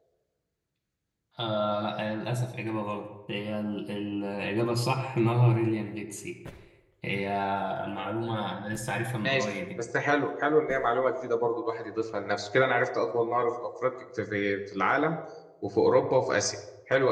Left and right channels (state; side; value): identical; both; correlation 1.00